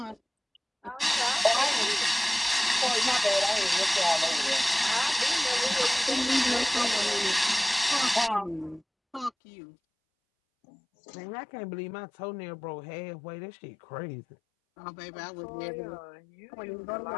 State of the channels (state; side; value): drops out; right; at 9.3 s